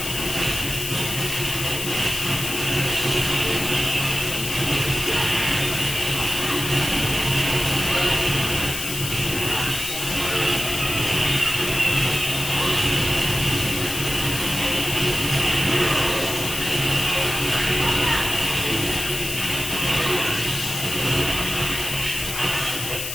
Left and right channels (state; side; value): noise; left; hiss, 5 dB below the sound